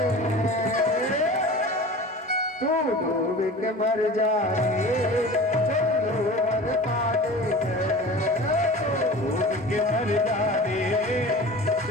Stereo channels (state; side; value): normal; both; correlation 0.38